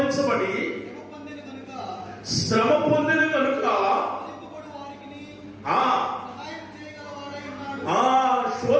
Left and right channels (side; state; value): both; identical; correlation 1.00